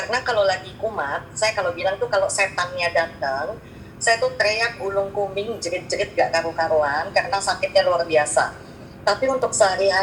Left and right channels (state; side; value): identical; both; correlation 1.00